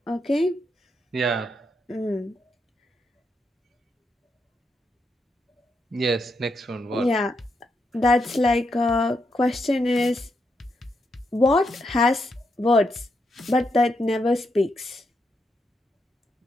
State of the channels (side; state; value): both; normal; correlation 0.81